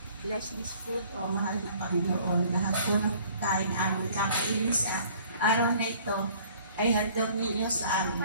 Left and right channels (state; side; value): inverted; both; correlation -0.54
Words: bless this food, O mahal na Panginoon. Lahat po ng kain aming kakainin sa araw na ito ay handog ninyo sa